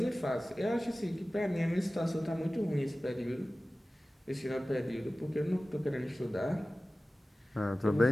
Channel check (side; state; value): both; normal; correlation 0.96